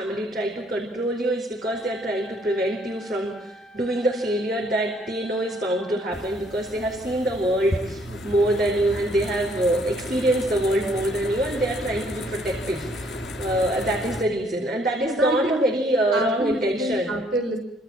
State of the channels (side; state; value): both; normal; correlation 0.64